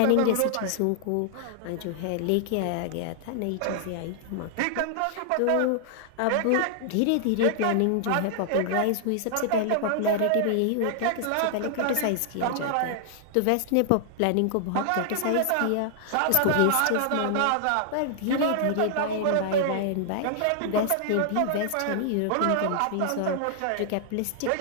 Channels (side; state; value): both; different; correlation -0.01